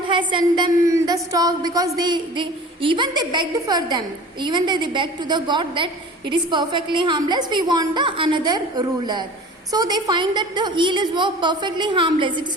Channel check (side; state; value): both; normal; correlation 0.41